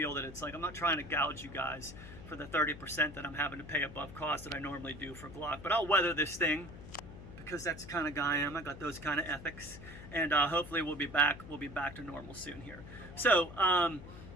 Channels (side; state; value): left; noise; hum, 14 dB below the sound